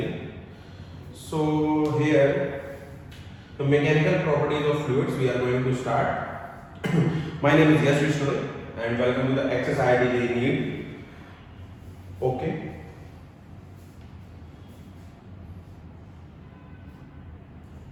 So here the mechanical properties of fluids we are going to start. My name is Yash Vishnu and welcome to the XSID NEET. Okay.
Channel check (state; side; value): identical; both; correlation 1.00